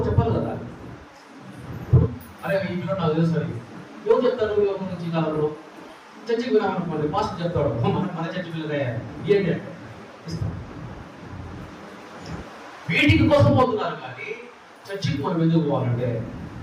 చెప్పాలి కదా. అరే ఈ పిల్లలు నాకు తెలుసు అని ఎవరు చెప్తారు? ఎవరి నుంచి కావాలి? చర్చికి వినాలనుకోండి, మాస్టర్ చెప్తాడు మన చర్చి పిల్లలే ఏంటి అంటే ఇస్తాం. వీటికి కోసం పోతున్నారు కానీ చర్చికి మనం ఎందుకు పోవాలంటే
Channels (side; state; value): both; identical; correlation 1.00